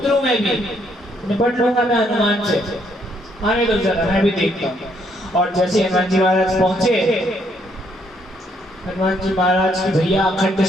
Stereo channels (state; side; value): normal; both; correlation 0.71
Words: हूं, मैं भी निपट लूंगा मैं हनुमान से, आने दो जरा मैं भी देखता हूँ। और जैसे हनुमान जी महाराज पहुंचे, हनुमान जी महाराज की भैया अखंड